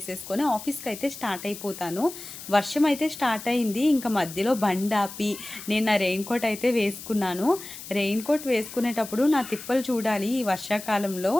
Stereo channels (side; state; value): left; noise; hiss, 13 dB below the sound